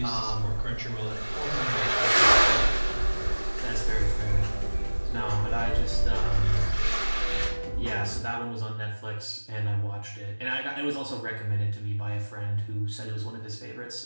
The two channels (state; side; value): inverted; both; correlation -1.00